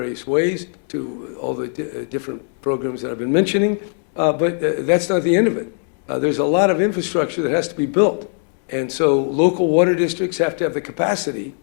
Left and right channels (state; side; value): silent; right; 59 dB below the other